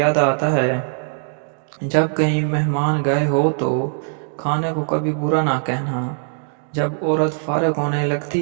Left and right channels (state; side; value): silent; left; digital silence